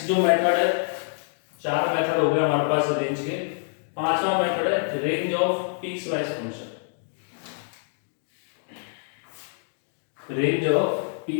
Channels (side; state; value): right; silent; digital silence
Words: जो मेथड है, 4 मेथड हो गए हमारे पास रेंज के। 5वां मेथड है range of piecewise function. Range of